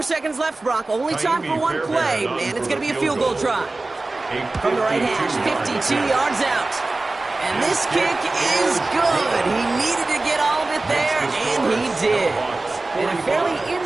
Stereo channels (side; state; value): left; quieter; 3.2 dB